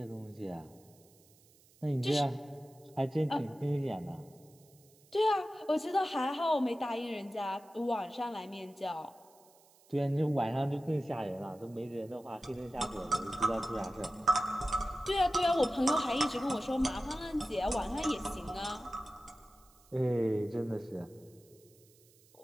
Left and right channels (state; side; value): noise; right; hiss, 28 dB below the sound